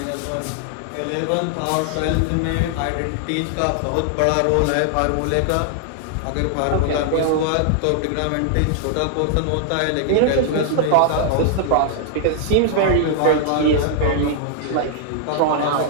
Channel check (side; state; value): both; different; correlation 0.00